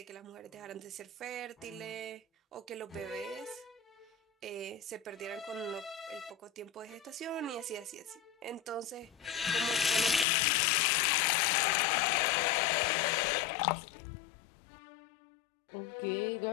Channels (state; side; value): drops out; right; at 10.2 s